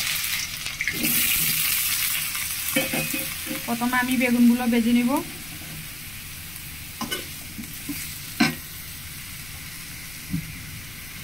প্রথমে আমি বেগুনগুলো ভেজে নেব।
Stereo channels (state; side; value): noise; left; rumble, 16 dB below the sound